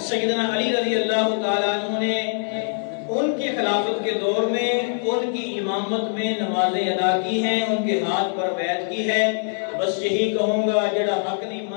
سیدنا علی رضی اللہ تعالی عنہ نے ان کی خلافت کے دور میں ان کی امامت میں نمازیں ادا کی ہیں، ان کے ہاتھ پر بیعت کی ہے۔ بس یہی کہوں گا، جڑا حق نہیں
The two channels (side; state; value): right; silent; digital silence